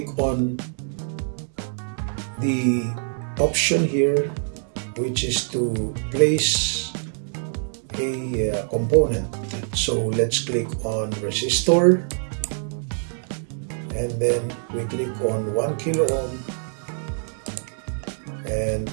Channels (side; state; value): left; silent; 60 dB below the other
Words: on the option here, which is to place a component. So let's click on resistor. And then we click on 1 kilo ohm and